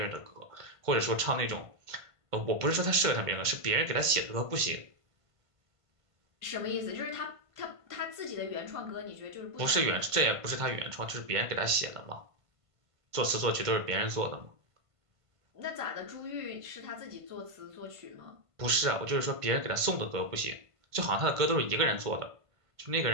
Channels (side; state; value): left; late; 1.5 ms